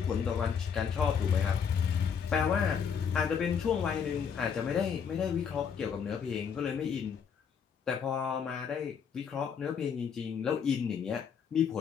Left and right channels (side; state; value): right; quieter; 7.0 dB